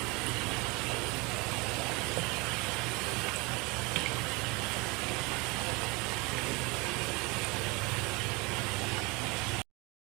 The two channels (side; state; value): left; quieter; 26.7 dB